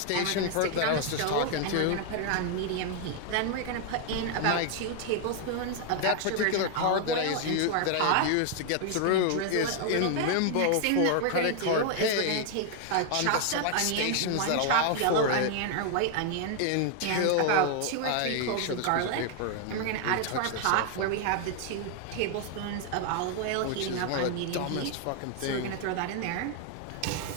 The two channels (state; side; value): different; both; correlation 0.00